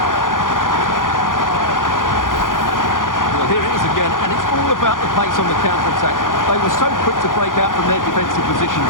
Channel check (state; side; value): late; right; 0.89 ms